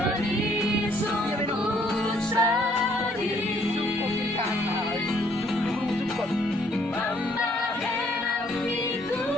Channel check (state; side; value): normal; both; correlation 0.65